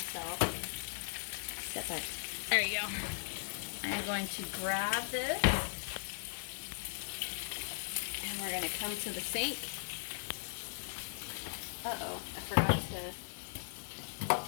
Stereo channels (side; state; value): right; silent; digital silence